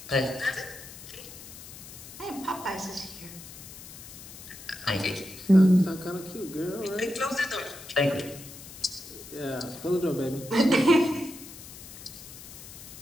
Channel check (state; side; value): noise; left; hiss, 15 dB below the sound